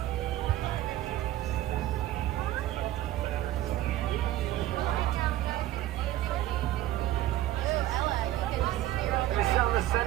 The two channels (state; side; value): quieter; left; 14.3 dB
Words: It's on the